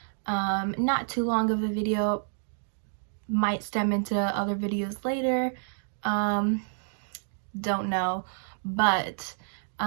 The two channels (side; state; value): left; silent; digital silence